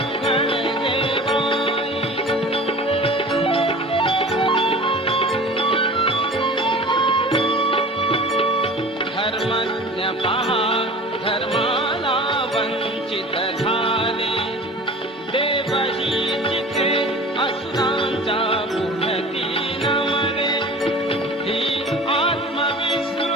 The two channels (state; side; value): normal; both; correlation 0.40